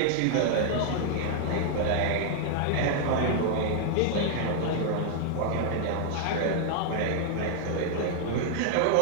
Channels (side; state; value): both; different; correlation 0.00